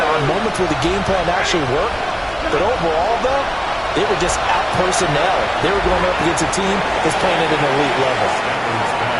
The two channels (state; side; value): identical; both; correlation 1.00